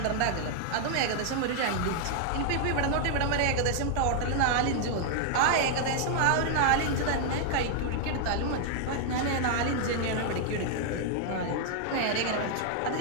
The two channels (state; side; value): different; both; correlation 0.00